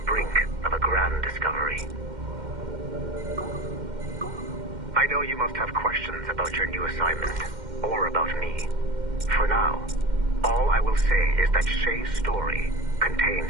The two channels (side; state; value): left; late; 2.1 ms